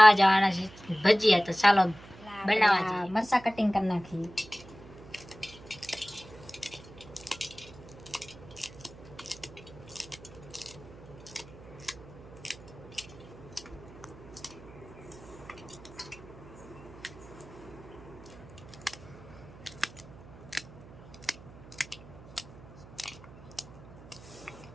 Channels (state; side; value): noise; right; hum, 18 dB below the sound